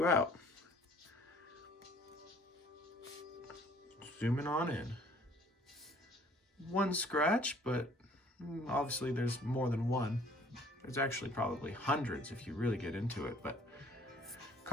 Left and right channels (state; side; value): normal; both; correlation 0.56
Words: out. Zooming on in. One scratch, but obviously there's more than one. There's actually probably hundreds if you really get into it, but